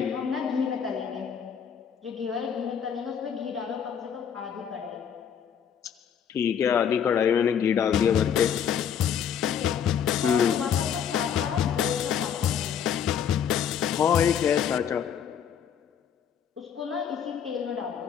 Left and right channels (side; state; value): right; quieter; 8.2 dB